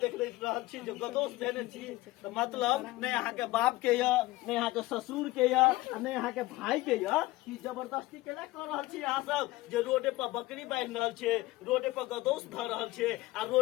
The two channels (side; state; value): right; quieter; 19.0 dB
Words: देख रहल छी जो गदोस देने छी तो मतलब नहीं अहाँ के बाप के या नहीं अहाँ के ससुर के या नहीं अहाँ के भाई के या कि जबरदस्ती केला कर रहल छी अहाँ सब जे रोडे पर बकरी बांध रहल छे रोडे पर गदोस ध रहल छे आ